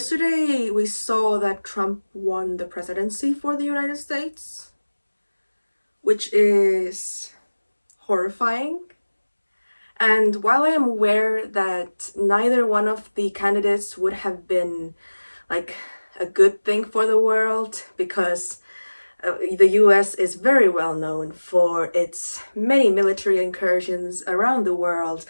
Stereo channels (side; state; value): both; inverted; correlation -1.00